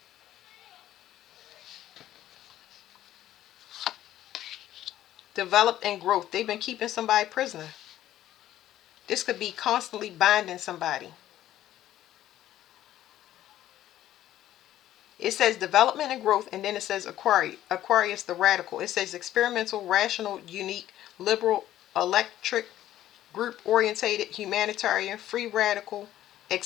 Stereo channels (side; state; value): right; quieter; 13.0 dB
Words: Develop and growth. They've been keeping somebody prisoner. This could be constantly binding somebody. It says development and growth, and then it says Aquarius the radical. It says experimental, rational, unique, liberal, electric, group orientated, humanitarian, free radical,